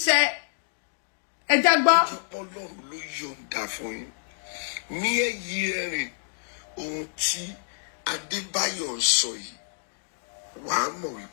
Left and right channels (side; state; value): right; silent; digital silence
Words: ṣẹ ẹja gbọ́. Ọlọ́run ló yọ̀ǹda fún yín ní èyí ẹ̀rìn ohun tí Adébáyọ̀ ń sọ yìí wàá mọ̀